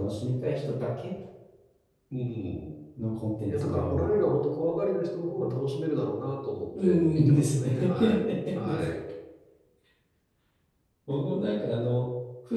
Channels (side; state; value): both; identical; correlation 1.00